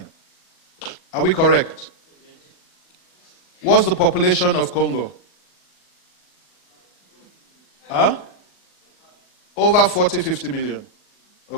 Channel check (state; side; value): late; right; 39 ms